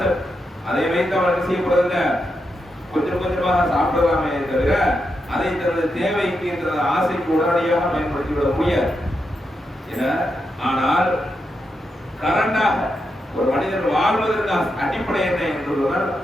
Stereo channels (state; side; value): normal; both; correlation 0.85